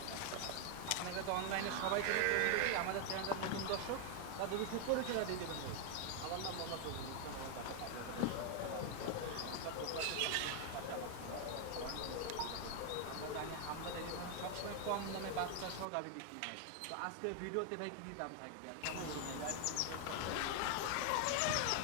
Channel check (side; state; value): both; different; correlation 0.00